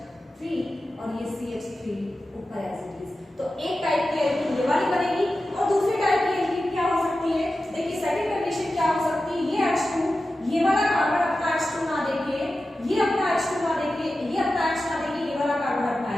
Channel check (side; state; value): both; normal; correlation 0.93